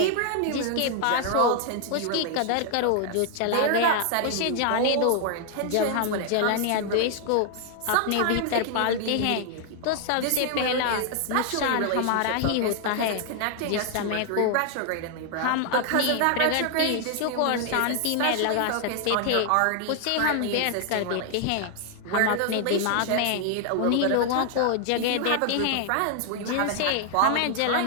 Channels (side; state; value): both; different; correlation 0.00